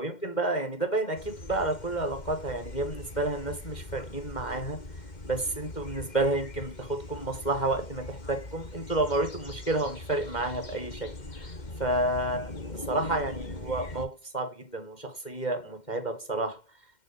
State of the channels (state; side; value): late; right; 2.1 ms